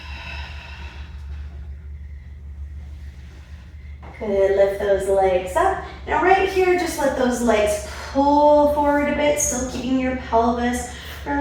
Good, lift those legs up. Now right here, just let those legs pull forward a bit, still keeping your pelvis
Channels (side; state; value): both; identical; correlation 1.00